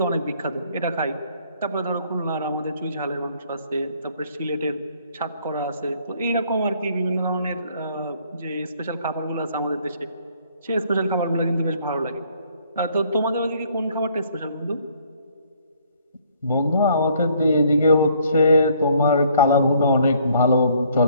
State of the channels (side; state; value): both; inverted; correlation -0.63